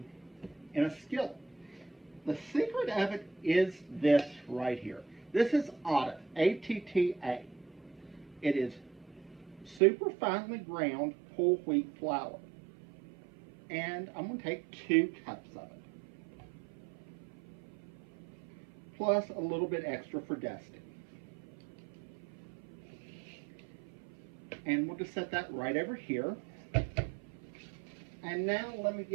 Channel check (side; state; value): left; drops out; at 9.8 s